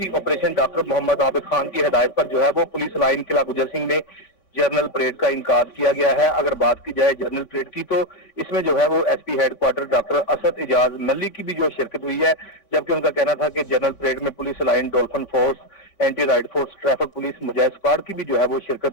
operation doctor Mohammad Abid Khan की हिदायत पर जो है वो पुलिस लाइन किला गुजर सिंह में जनरल परेड का इनकाद किया गया है। अगर बात की जाए जनरल परेड की तो इसमें जो है वो SP headquarter doctor Asad Ijaz Malli की भी जो शिरकत हुई है, जबकि उनका कहना था कि जनरल परेड में police line, dolphin force, anti riot force, traffic police, Mujahid squad की भी जो है वो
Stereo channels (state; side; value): late; right; 3.5 ms